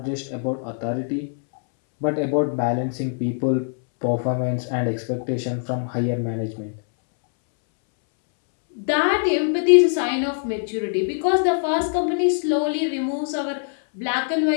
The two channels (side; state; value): right; silent; 64 dB below the other